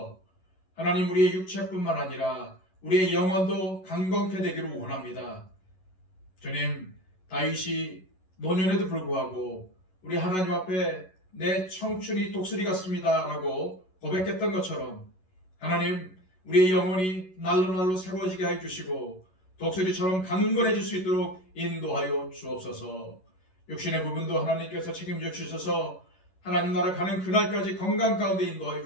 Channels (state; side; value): late; right; 11 ms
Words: 하나님, 우리의 육체뿐만 아니라 우리의 영혼도 강건케 되기를 원합니다. 주님, 다윗이 노년에도 불구하고 우리 하나님 앞에 내 청춘이 독수리 같습니다 라고 고백했던 것처럼 하나님, 우리의 영혼이 날로 새로워지게 해주시고 독수리처럼 강건해질 수 있도록 인도하여 주옵소서. 육신의 부분도 하나님께서 책임져 주셔서 하나님 나라 가는 그날까지 건강 가운데 인도하여